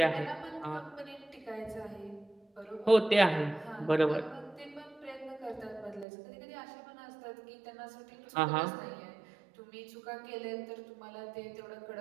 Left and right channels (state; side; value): drops out; left; at 6.1 s